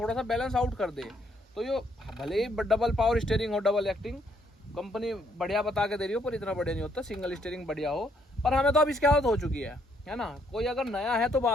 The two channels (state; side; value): normal; both; correlation 0.71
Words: सा बैलेंस आउट कर दे। तो ये भले ही डबल पावर स्टीयरिंग हो, डबल एक्टिंग, कंपनी बढ़िया बता के दे रही हो, पर इतना बढ़िया नहीं होता। सिंगल स्टीयरिंग बढ़िया हो, पर हमें तो अब इसकी आदत हो चुकी है ना। कोई अगर नया है तो